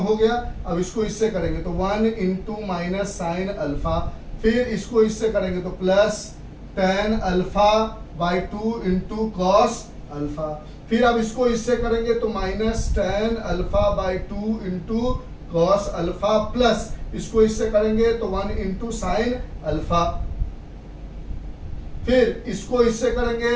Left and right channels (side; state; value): both; identical; correlation 1.00